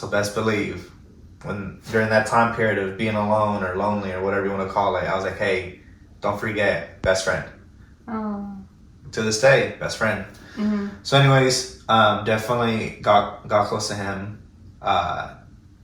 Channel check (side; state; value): both; identical; correlation 1.00